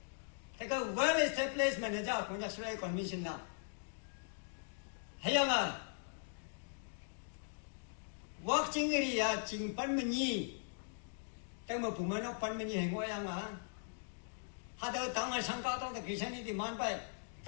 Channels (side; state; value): right; silent; digital silence